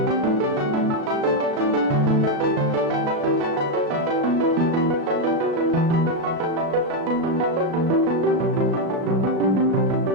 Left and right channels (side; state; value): left; late; 36 ms